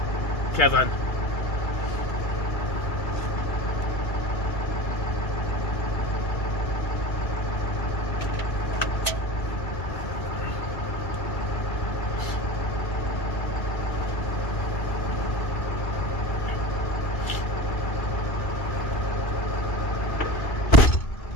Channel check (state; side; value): late; right; 2.4 ms